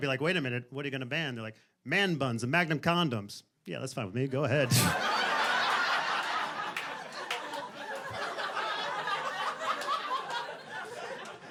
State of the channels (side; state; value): both; identical; correlation 1.00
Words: be like, wait a minute, what are you going to ban? They're like, man buns and Magnum condoms. Yeah, that's fine with me. Go ahead.